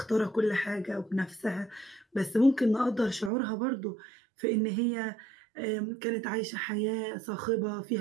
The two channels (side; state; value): left; drops out; at 3.3 s